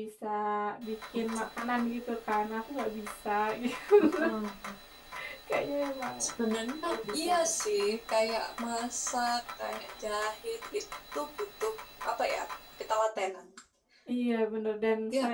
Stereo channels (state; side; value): identical; both; correlation 1.00